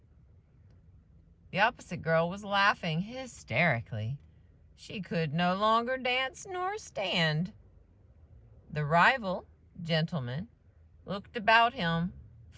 The opposite girl was laughing hysterically. She could no longer dance nor stand. The rival gentleman looked about him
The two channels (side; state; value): both; identical; correlation 1.00